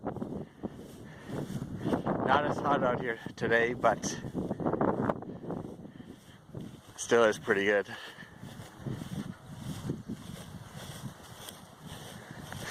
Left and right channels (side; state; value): both; identical; correlation 1.00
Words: Not as hot out here today, but still is pretty good.